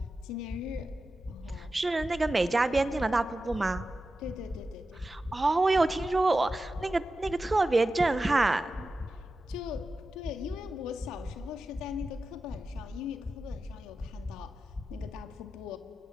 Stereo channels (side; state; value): both; normal; correlation 0.92